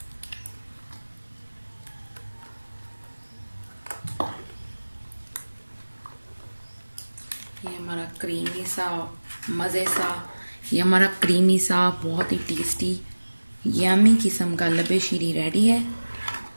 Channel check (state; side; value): inverted; both; correlation -1.00